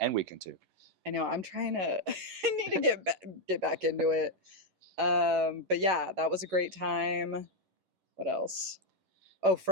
weekend 2. I know. I'm trying to. I need to get back into it. But yeah, that was a great time. What else? Oh,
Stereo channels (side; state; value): left; late; 11 ms